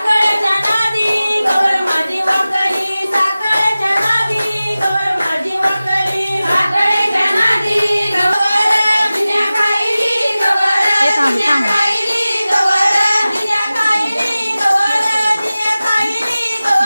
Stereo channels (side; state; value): both; inverted; correlation -0.96